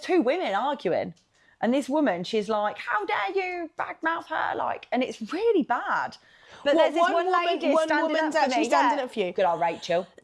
women arguing. And this woman, she's like, how dare you badmouth her? Like, and it's really bad. But there's this one lady standing up for you. Good old Rachel.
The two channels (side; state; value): both; identical; correlation 1.00